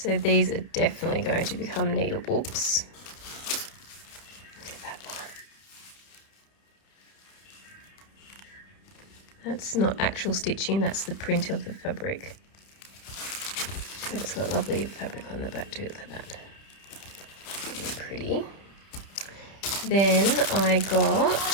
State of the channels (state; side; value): late; right; 30 ms